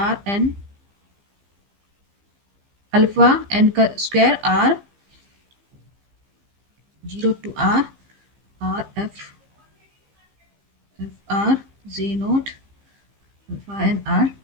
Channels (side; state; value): left; late; 15 ms